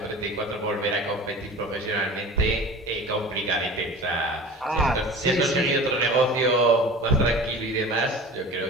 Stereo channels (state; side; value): normal; both; correlation 0.38